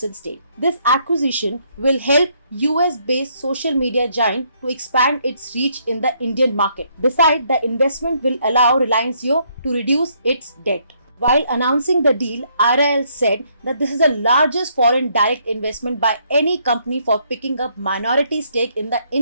stake. This acquisition will help US-based social media giant to expand its reach in the Indian market. Besides, the investment will allow Reliance Jio to reduce its debt. While announcing the deal, RIL said that this is the largest foreign direct investment by any company for picking up minority stake in the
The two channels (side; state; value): both; inverted; correlation -0.70